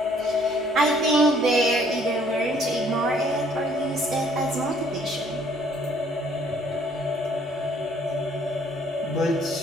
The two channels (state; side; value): normal; both; correlation 0.61